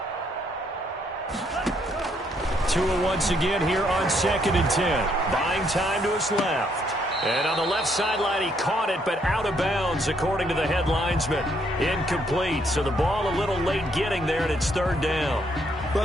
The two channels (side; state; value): both; normal; correlation 0.71